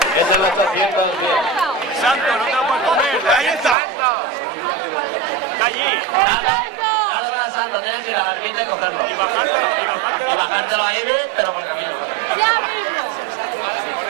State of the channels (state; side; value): drops out; left; at 3.8 s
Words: Es el 810. Santo, no te lo puedes comer. Ahí está. Está allí. Dado la santa, tienes que ir a la barquita y cogerlo. Y bajártelo. Y bajártelo ahí, pero por camino. Ya mismo. Con